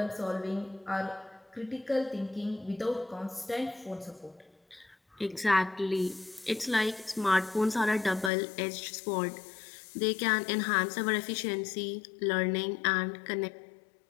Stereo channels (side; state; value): right; drops out; at 8.3 s